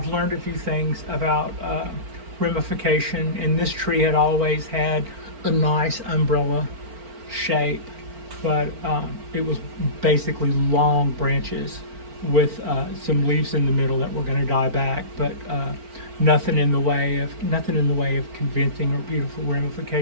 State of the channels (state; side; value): late; left; 4.4 ms